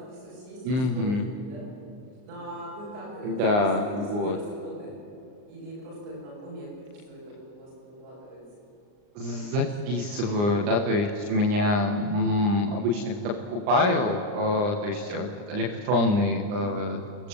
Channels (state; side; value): late; left; 39 ms